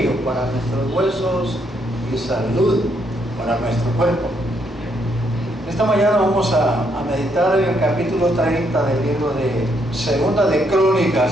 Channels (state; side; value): normal; both; correlation 0.74